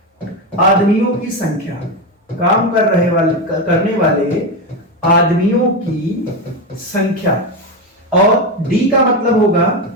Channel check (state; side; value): normal; both; correlation 0.13